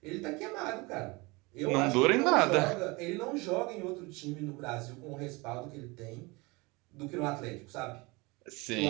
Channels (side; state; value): left; quieter; 25.3 dB